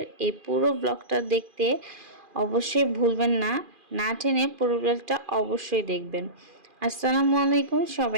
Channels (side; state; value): left; late; 2.4 ms